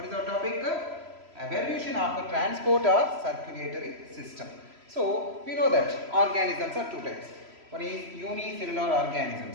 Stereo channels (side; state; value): left; late; 3.0 ms